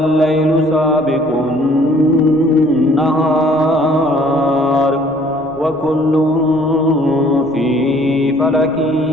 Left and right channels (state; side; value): noise; left; rumble, 26 dB below the sound